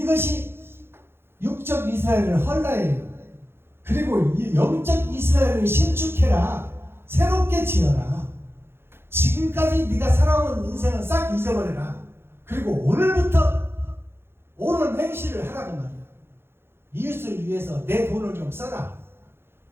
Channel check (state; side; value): late; left; 0.11 ms